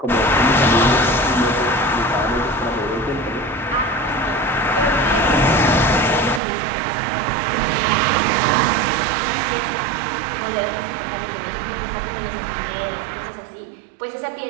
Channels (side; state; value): left; drops out; at 6.4 s